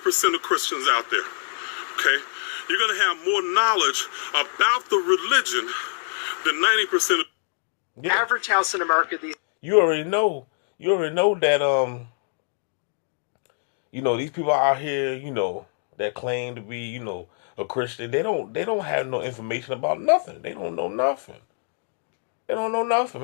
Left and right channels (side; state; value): right; silent; digital silence